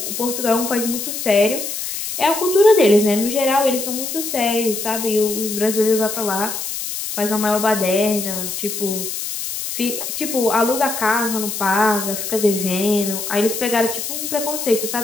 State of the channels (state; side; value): noise; left; hiss, 5 dB below the sound